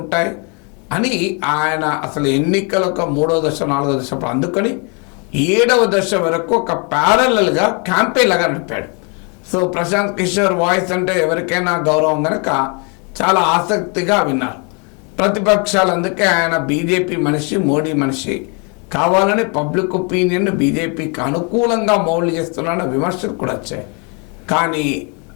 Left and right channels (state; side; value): quieter; right; 34.9 dB